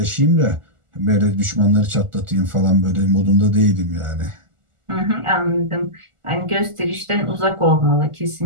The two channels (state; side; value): late; left; 1.4 ms